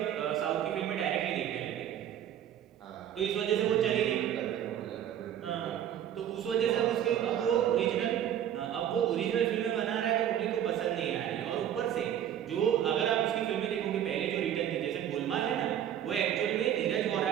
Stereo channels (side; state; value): left; quieter; 10.3 dB